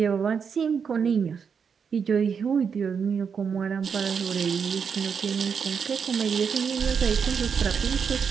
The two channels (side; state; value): left; quieter; 6.5 dB